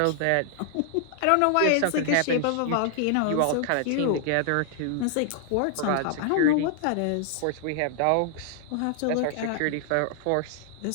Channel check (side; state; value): both; different; correlation 0.00